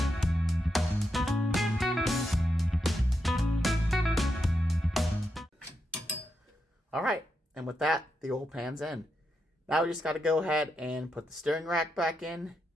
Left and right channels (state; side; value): normal; both; correlation 0.84